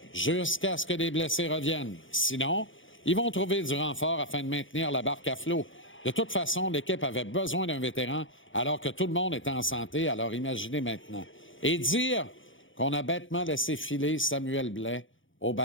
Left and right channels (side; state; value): right; late; 0.56 ms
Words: jusqu'à ce que les blessés reviennent. Sinon, ils vont trouver du renfort afin de maintenir la barque à flot. De toute façon, l'équipe avait besoin d'un vétéran alors que tout le monde était en santé, alors imaginez maintenant. Et dire qu'on a bêtement laissé filer Samuel Blais au